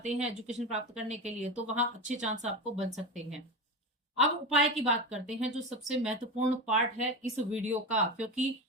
हैं एजुकेशन प्राप्त करने के लिए, तो वहां अच्छे चांस आपको बन सकते हैं। अब उपाय की बात करते हैं, जो सबसे महत्वपूर्ण पार्ट है इस वीडियो का, क्योंकि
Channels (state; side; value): normal; both; correlation 0.21